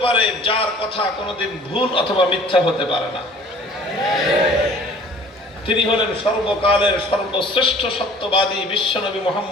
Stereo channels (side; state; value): both; normal; correlation 0.50